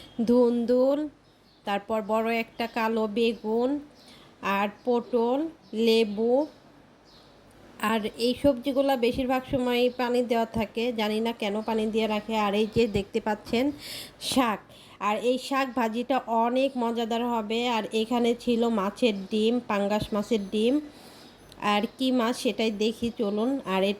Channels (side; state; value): both; identical; correlation 1.00